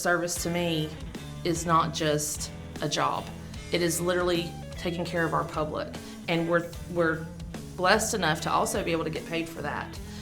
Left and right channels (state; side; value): identical; both; correlation 1.00